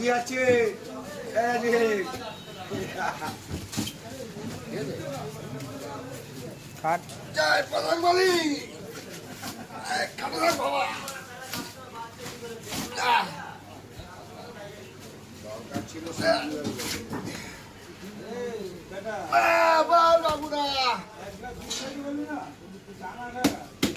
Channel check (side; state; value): both; identical; correlation 1.00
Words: আছে জয় প্রধান বলি বাবা দরকার ছিল